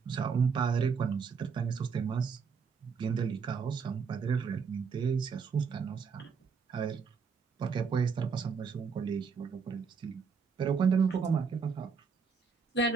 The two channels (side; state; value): left; quieter; 5.7 dB